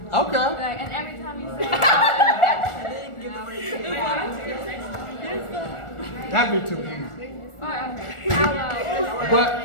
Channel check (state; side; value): late; right; 1.4 ms